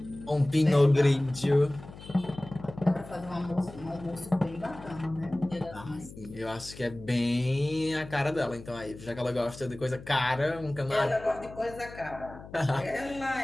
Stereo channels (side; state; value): left; noise; hum, 16 dB below the sound